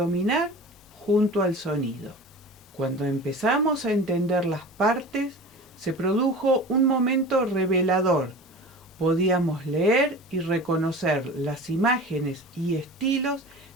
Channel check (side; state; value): both; normal; correlation 0.36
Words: junto al sonido. Cuando empezamos a entender las partes, se produjo un momento revelador. Podíamos leer y reconocer las imágenes y estilos